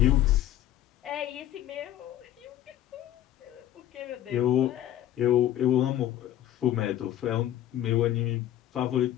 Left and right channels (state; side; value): quieter; right; 12.4 dB